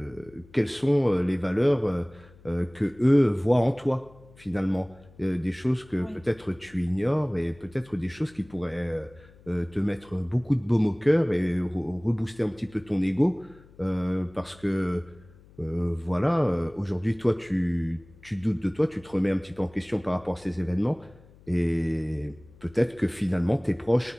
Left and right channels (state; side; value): noise; left; hum, 25 dB below the sound